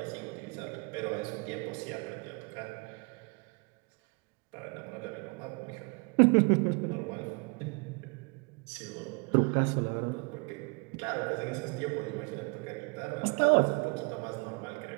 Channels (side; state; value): left; quieter; 31.5 dB